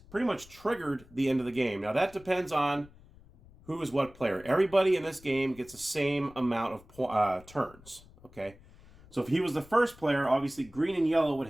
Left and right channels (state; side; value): noise; left; rumble, 23 dB below the sound